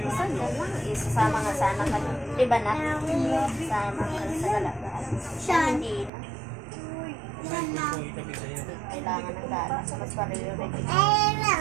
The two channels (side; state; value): left; drops out; at 6.1 s